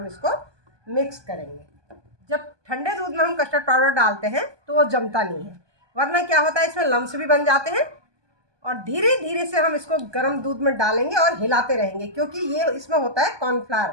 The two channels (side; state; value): left; late; 1.2 ms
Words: इसको मिक्स करेंगे। जब ठंडे दूध में हम कस्टर्ड पाउडर डालते हैं तो वो जमता नहीं है, वरना क्या होता है इसमें लम्स भी बन जाते हैं। और धीरे धीरे से हम इसको गर्म दूध में डालेंगे और हिलाते रहेंगे, क्योंकि ये इसमें होता है